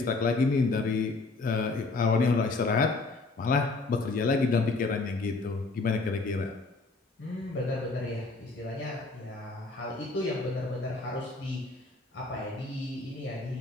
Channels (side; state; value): right; quieter; 3.6 dB